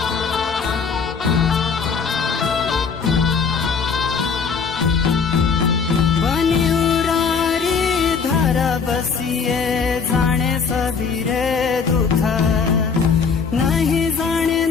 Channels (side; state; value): right; quieter; 5.7 dB